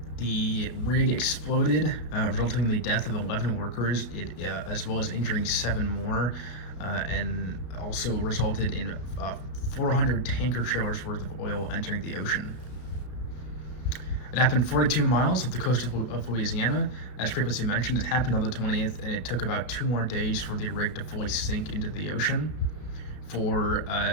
the rig exploded, resulting in the death of 11 workers, as well as injuring 7 more, and also resulted in 400 tanker trailers worth of oil entering the ocean. It happened 42 miles off the coast of Louisiana. As previously mentioned, it happened on the 20th, and it took about 2 more days for the rig to fully sink into the ocean. For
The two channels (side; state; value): right; late; 33 ms